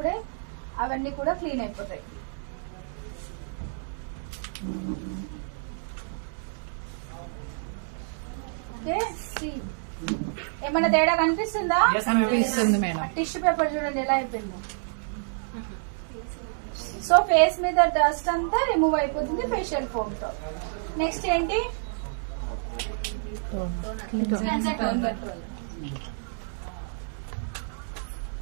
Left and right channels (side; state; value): left; silent; digital silence